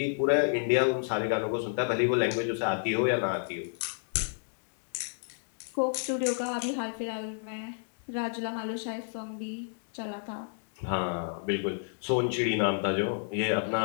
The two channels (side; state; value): right; silent; digital silence